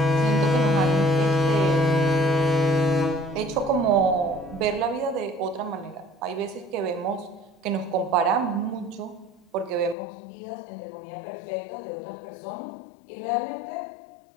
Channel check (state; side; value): drops out; right; at 10.0 s